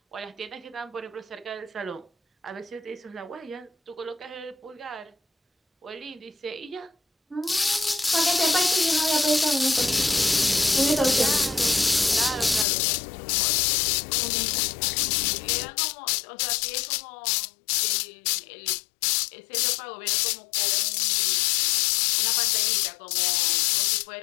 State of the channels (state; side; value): drops out; right; at 12.7 s